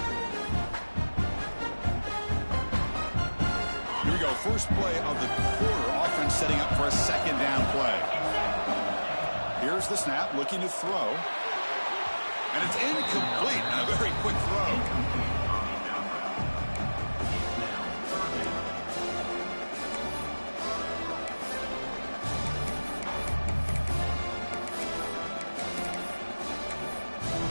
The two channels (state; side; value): inverted; both; correlation -1.00